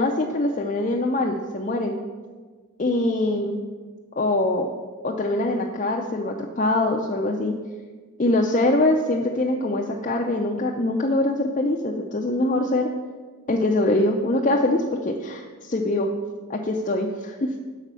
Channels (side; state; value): both; normal; correlation 0.35